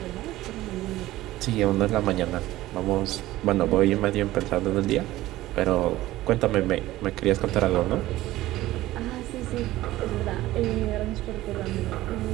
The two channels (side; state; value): left; quieter; 16.2 dB